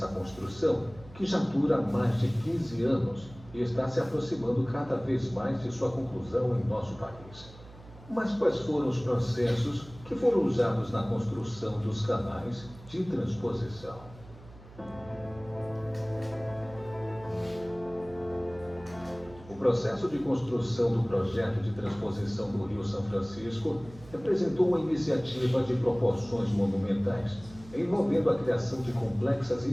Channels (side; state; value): right; noise; hum, 20 dB below the sound